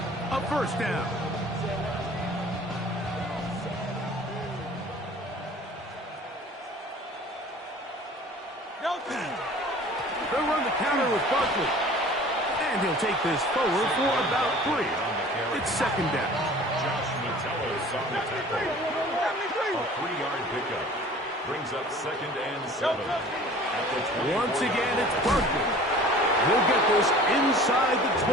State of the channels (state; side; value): normal; both; correlation 0.46